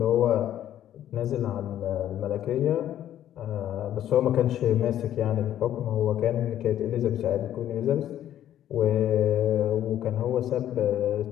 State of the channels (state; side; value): quieter; right; 11.6 dB